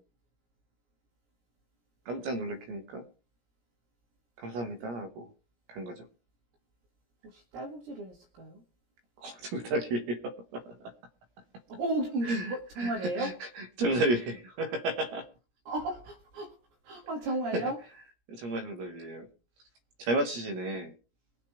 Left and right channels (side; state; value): left; late; 17 ms